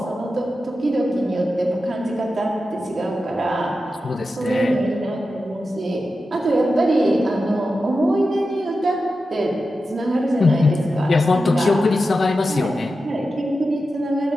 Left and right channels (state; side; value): normal; both; correlation 0.91